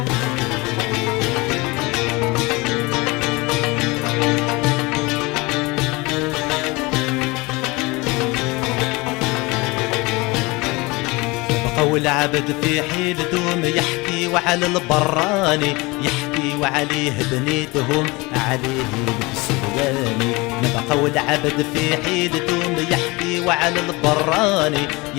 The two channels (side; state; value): right; quieter; 24.2 dB